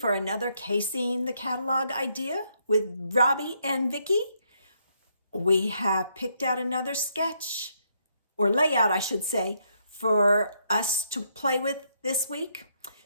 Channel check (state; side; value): inverted; both; correlation -0.75